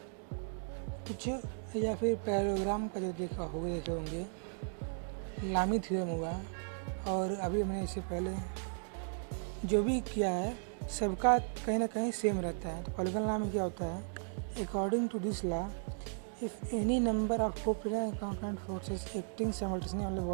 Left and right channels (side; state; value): left; silent; 54 dB below the other